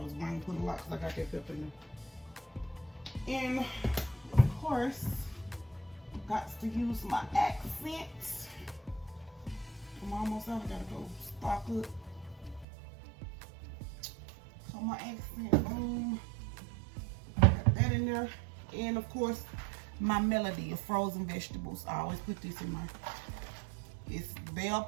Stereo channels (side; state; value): left; drops out; at 12.7 s